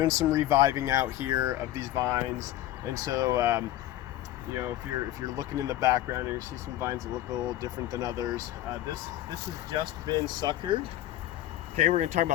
some reviving out here of these vines, and so you know, if you're looking in the background and you see some vines that look a little different than others, this has just been suckered. Okay, we're gonna talk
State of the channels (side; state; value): right; quieter; 14.0 dB